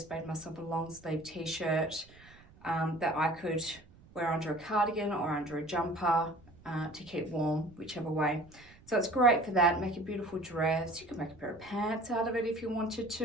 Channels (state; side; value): noise; right; rumble, 25 dB below the sound